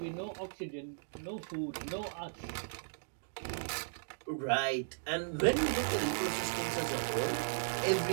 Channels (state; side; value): silent; left; digital silence